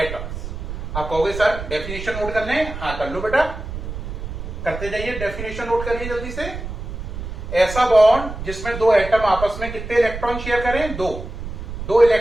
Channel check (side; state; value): right; noise; rumble, 8 dB below the sound